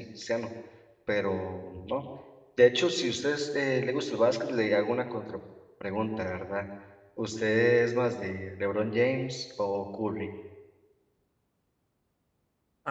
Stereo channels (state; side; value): identical; both; correlation 1.00